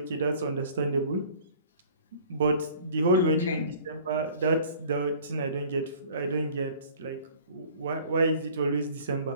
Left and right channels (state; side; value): inverted; both; correlation -0.50